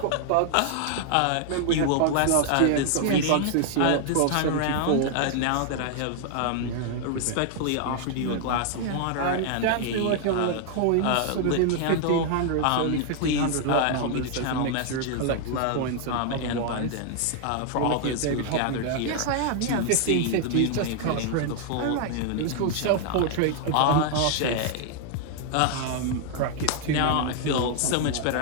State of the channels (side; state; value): both; different; correlation 0.00